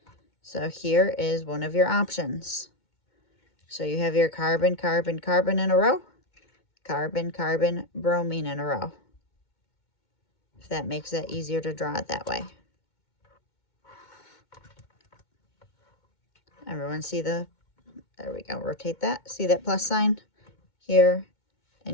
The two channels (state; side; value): late; right; 2.2 ms